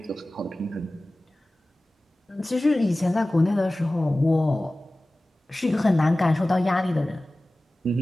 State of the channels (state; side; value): normal; both; correlation 0.97